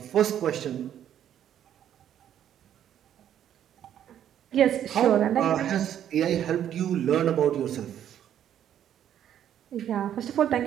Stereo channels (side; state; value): left; quieter; 10.3 dB